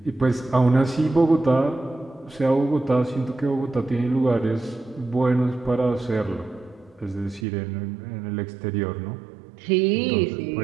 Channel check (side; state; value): left; drops out; at 7.5 s